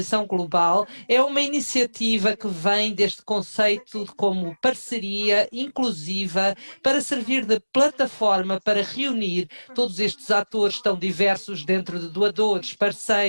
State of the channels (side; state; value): both; inverted; correlation -1.00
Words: global é uma iniciativa que vem deste conceito como parceria inclusiva para servir de plataforma para reunir todos estes atores tão diversos dentro de doadores,